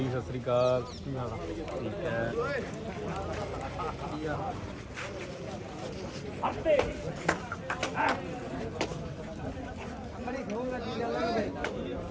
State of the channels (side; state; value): both; identical; correlation 1.00